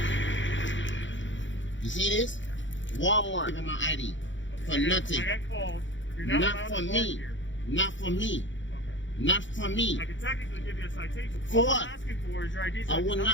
You see this? Walmart. Give me my ID for nothing. I got called. You're not Not allowed for to park me. here. Not for me. Not for me. I can technically give you a citation. For All what? I'm asking for is your ID. I will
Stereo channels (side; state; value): right; late; 0.55 ms